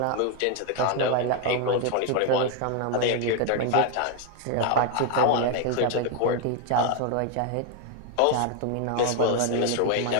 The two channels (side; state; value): both; different; correlation 0.01